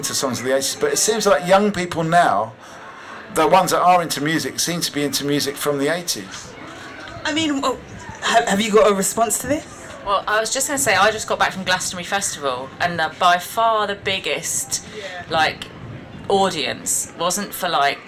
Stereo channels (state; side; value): identical; both; correlation 1.00